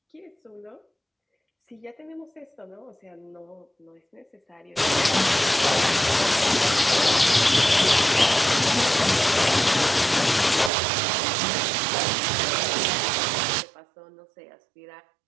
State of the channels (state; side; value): drops out; left; at 10.7 s